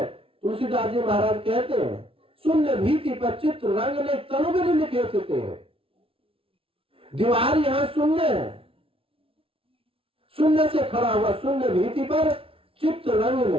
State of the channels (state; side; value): late; left; 0.26 ms